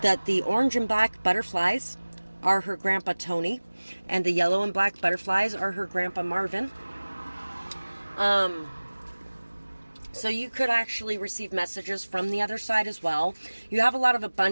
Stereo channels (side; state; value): both; inverted; correlation -1.00